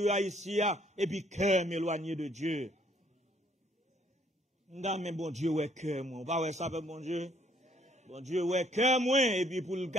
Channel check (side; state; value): both; normal; correlation 0.65